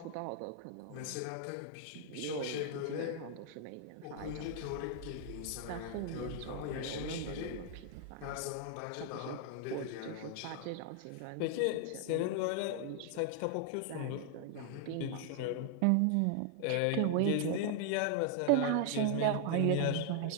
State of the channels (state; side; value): different; both; correlation 0.00